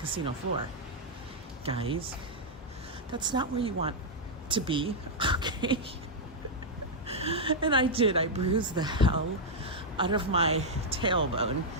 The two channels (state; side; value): normal; both; correlation -0.04